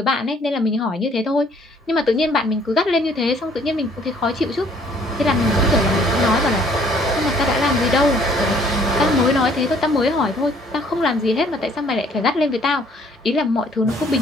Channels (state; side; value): normal; both; correlation 0.60